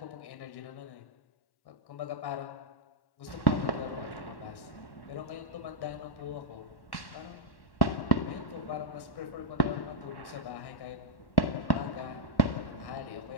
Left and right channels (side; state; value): right; late; 1.1 ms